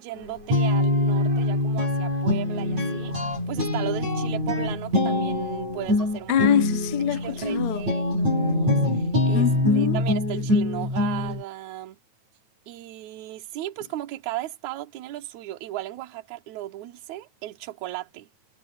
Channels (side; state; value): left; late; 9.1 ms